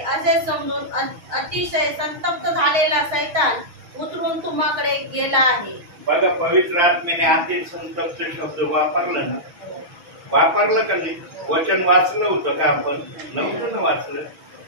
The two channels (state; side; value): late; left; 6.3 ms